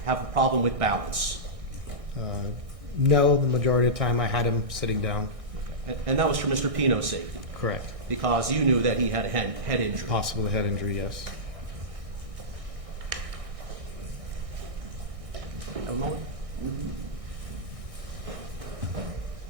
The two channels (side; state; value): left; late; 1.6 ms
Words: have a problem with balance? No, the majority of the time I had him sitting down. And that was for Mr. Pino's safety, Correct. because you knew that he had a head injury. Possible head injury, yes. A moment.